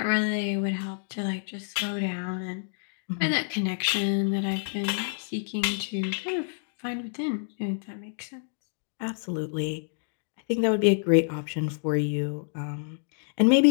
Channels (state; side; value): silent; right; digital silence